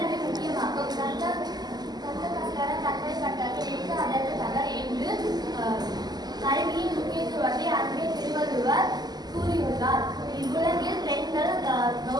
முக்கியமாகும். தந்தை கட்டளை அதற்கு தகர் என்று கல்வியின் முக்கியத்துவத்தை அன்பே திருவள்ளுவர் கூறியுள்ளார். இவ்வுலகில் பெண்கள்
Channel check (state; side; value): late; left; 0.20 ms